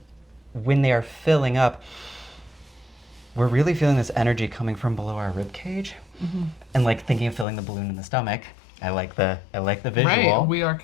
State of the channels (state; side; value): drops out; right; at 7.5 s